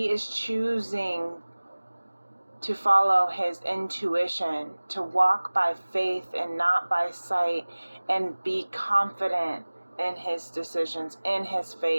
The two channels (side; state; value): both; inverted; correlation -1.00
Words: is choosing to follow his intuition, to walk by faith and not by sight, and be confident in his decisions, in his